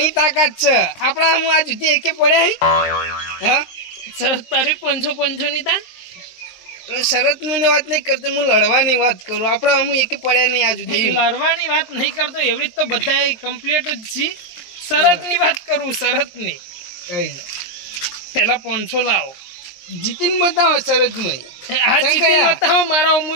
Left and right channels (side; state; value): right; late; 23 ms